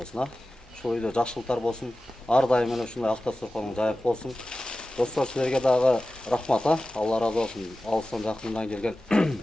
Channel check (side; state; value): both; normal; correlation 0.95